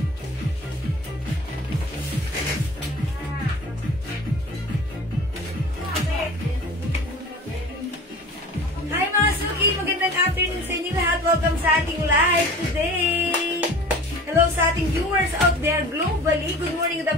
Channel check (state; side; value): normal; both; correlation 0.40